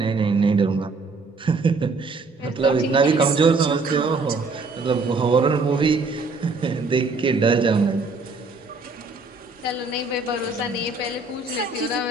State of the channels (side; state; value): left; quieter; 3.8 dB